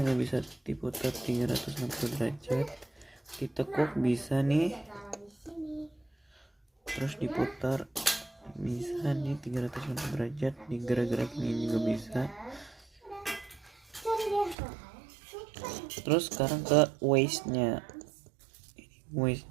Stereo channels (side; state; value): left; drops out; at 14.6 s